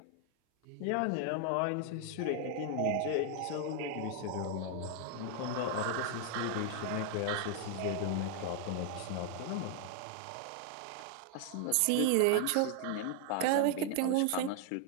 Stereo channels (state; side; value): different; both; correlation 0.00